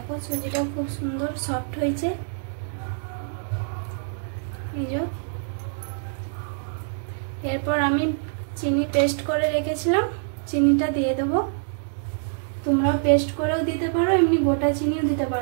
সুজিটা খুব সুন্দর সফট হয়েছে। এই যে এরপর আমি চিনি পেস্ট করে রেখেছিলাম, চিনিটা দিয়ে দেবো। তোমরাও পেস্ট করেও দিতে পারো, এমনি গোটা চিনিও দিতে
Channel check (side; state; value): left; silent; digital silence